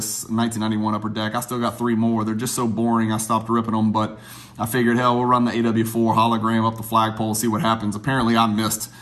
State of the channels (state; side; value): identical; both; correlation 1.00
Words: 1991 Upper Deck. I still got 3 more. They're just so boring, I stopped ripping them, but I figured, hell, we'll run the AW4 hologram up the flagpole, see what happens. Apparently, I missed